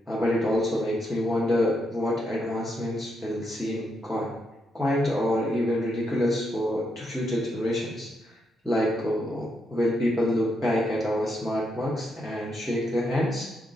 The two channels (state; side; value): normal; both; correlation 0.80